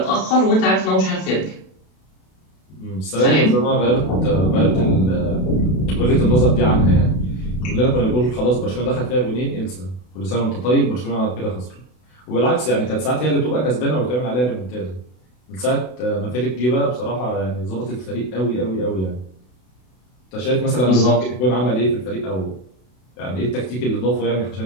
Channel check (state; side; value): late; right; 32 ms